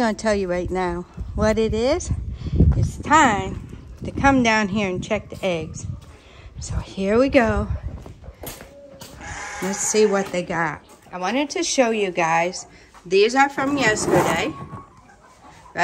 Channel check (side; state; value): both; identical; correlation 1.00